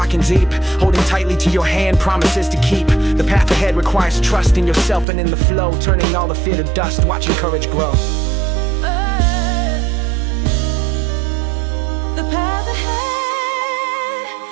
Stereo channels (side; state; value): left; drops out; at 5.1 s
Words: and deep. Holding tightly to your hand, promises to keep. The path ahead requires trust in yourself and in the flow. Turning all the fear to dust, watching courage grow. The path ahead,